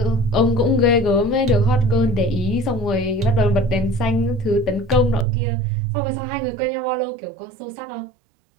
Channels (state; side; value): drops out; left; at 5.2 s